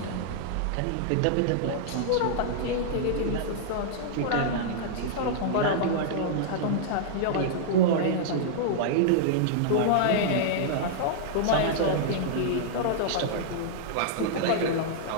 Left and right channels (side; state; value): both; different; correlation -0.02